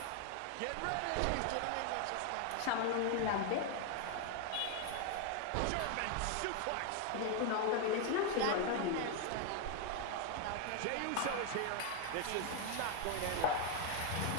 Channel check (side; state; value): both; different; correlation 0.01